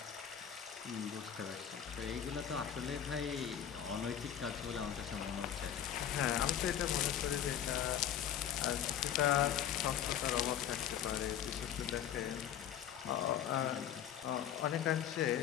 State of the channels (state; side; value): quieter; right; 9.9 dB